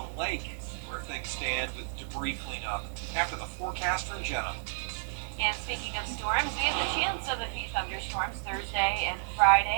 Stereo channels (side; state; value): left; silent; 57 dB below the other